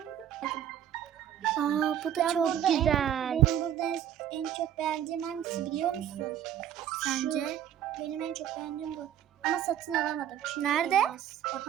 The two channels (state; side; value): quieter; left; 10.4 dB